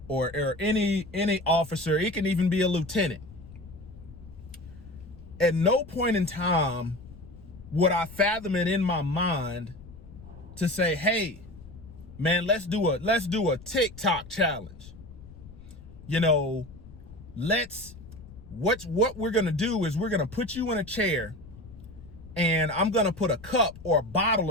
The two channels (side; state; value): left; noise; rumble, 18 dB below the sound